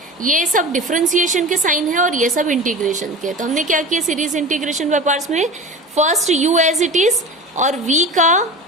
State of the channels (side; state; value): both; normal; correlation 0.33